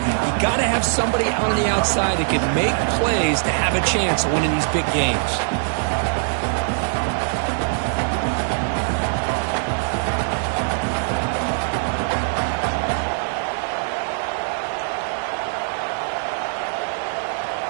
got to have somebody out on the outside that can make plays to have a chance of winning these big games.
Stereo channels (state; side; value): silent; left; 60 dB below the other